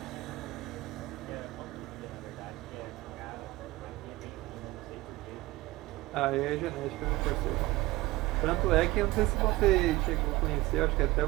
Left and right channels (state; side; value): quieter; left; 19.5 dB